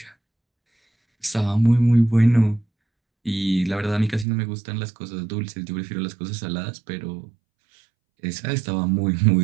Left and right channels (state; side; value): drops out; left; at 4.2 s